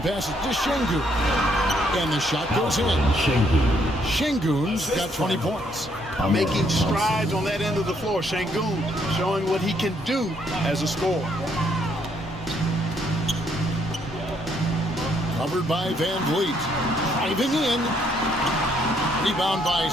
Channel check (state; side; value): normal; both; correlation 0.71